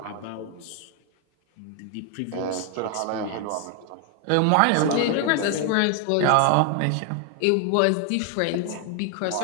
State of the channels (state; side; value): different; both; correlation 0.00